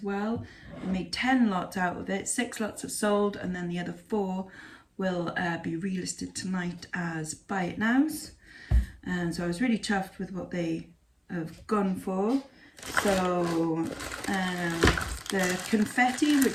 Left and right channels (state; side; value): identical; both; correlation 1.00